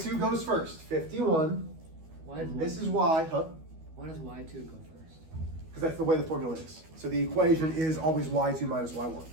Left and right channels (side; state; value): left; late; 12 ms